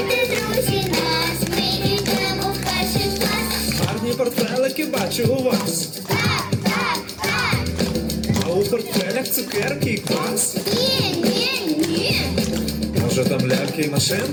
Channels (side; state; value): both; identical; correlation 1.00